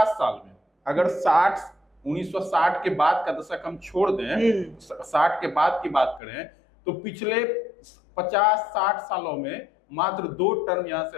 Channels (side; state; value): right; drops out; at 6.2 s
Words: साल में, अगर 1960 के बाद का दशक हम छोड़ दें, 60 के बाद की बात करें, तो पिछले 50-60 सालों में मात्र 2 टर्म यहाँ से